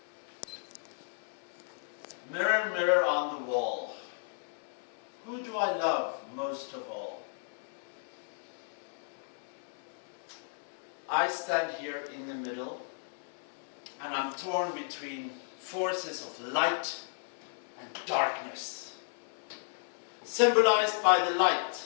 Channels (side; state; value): right; silent; digital silence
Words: Mirror, mirror on the wall, who do I love most of all? I stand here in the middle, and I'm torn between forces of light and darkness. Symbolized by the